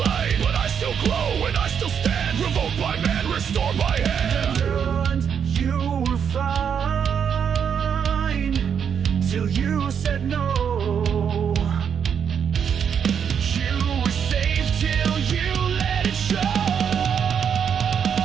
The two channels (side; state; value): left; quieter; 7.6 dB